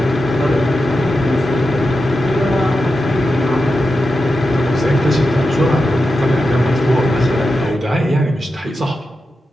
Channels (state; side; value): normal; both; correlation 0.90